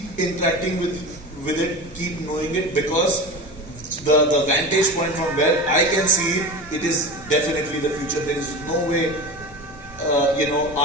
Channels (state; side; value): normal; both; correlation 0.29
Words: interacting with it, keep knowing it, because the vantage point from where I can see it, it is definitely the future. There is no way,